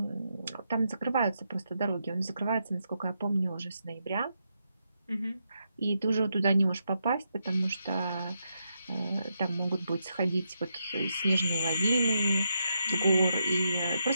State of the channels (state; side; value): inverted; both; correlation -0.83